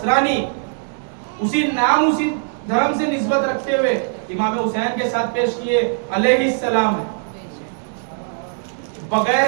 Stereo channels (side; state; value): left; silent; digital silence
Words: उसी नाम, उसी धर्म से निस्बत रखते हुए इमाम हुसैन के साथ पेश किए अलैहिस्सलाम है।